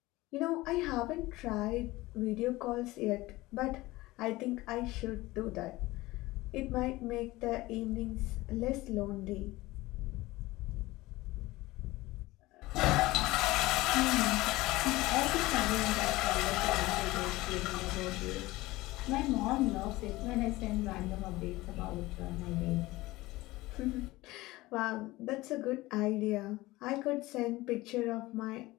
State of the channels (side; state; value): right; quieter; 19.4 dB